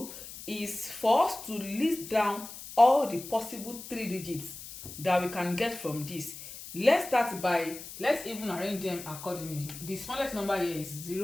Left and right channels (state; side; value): noise; left; hiss, 13 dB below the sound